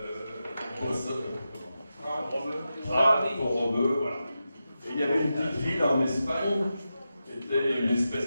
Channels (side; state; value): both; inverted; correlation -0.90